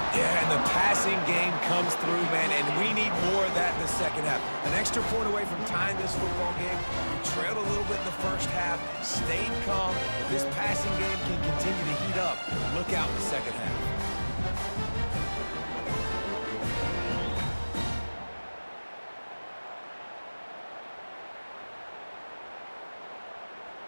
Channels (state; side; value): inverted; both; correlation -1.00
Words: Yeah, and the passing game comes through, man, and we need more of that in the second half. An extra point away from tying this football game. We trailed a little bit in the first half, stayed calm. If this passing game can continue to heat up, look out in the second half.